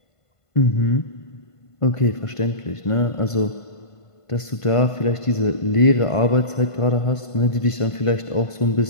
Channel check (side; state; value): right; late; 1.5 ms